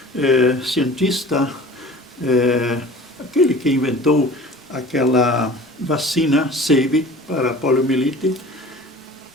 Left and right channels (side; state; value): both; normal; correlation 0.43